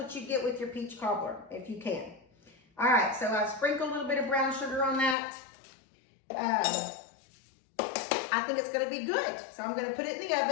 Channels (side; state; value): right; drops out; at 5.2 s